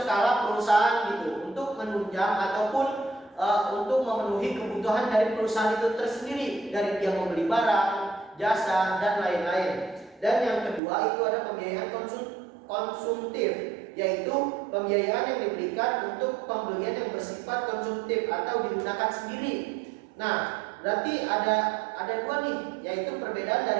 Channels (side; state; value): left; drops out; at 10.8 s